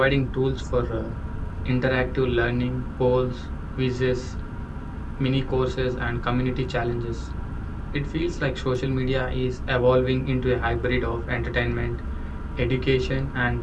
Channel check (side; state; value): both; identical; correlation 1.00